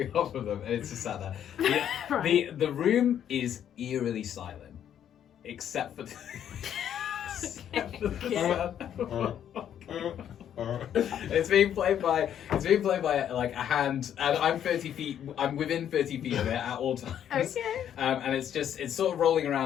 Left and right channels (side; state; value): right; quieter; 9.8 dB